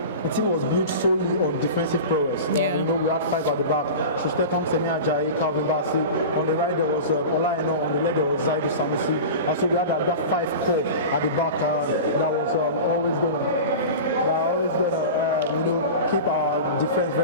the team was built solely on defensive prowess. You know, we had 5 at the back: Shusteton, Semi Ajayi, Calvin Bassey. On the right there was Ola Eno, on the left there was Zaidu Sanusi. And so we had that 5 core at the back that was always going to keep our defense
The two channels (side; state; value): both; inverted; correlation -0.31